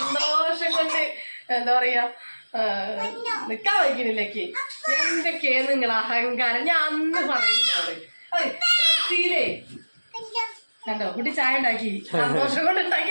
കൊണ്ട് എന്താ പറയാ നിക്കാൻ വയ്ക്കുന്നില്ലേക്ക്. എന്തൊക്കെയാ നിങ്ങൾ അഹങ്കാരം? ഞാൻ അന്ന് പറയുന്നത് ബ്രസീലേ കണ്ടോ കുട്ടി ചായ ഉണ്ടാക്കി, സന്തോഷം കൊണ്ട്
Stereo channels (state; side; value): inverted; both; correlation -1.00